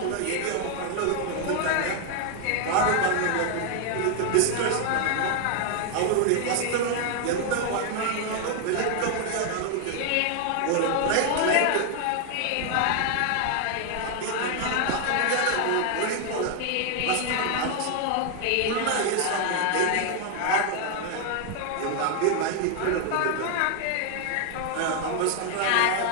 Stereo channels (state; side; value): different; both; correlation 0.00